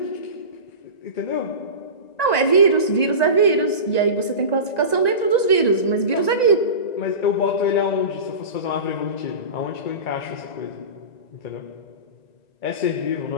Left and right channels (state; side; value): late; right; 1.9 ms